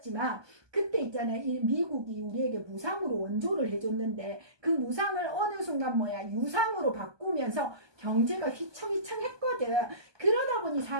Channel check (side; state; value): left; late; 1.2 ms